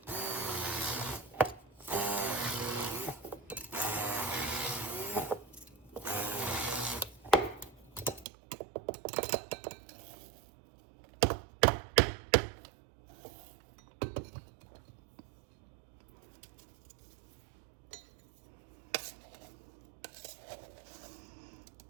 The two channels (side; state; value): left; drops out; at 8.2 s